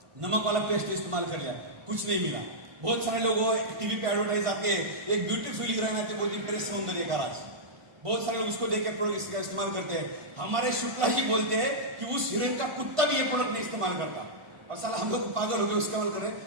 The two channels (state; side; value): late; left; 1.5 ms